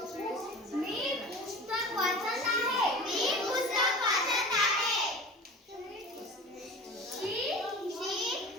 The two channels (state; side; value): normal; both; correlation 0.37